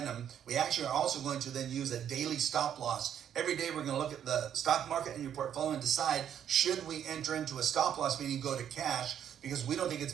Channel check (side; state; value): left; quieter; 9.4 dB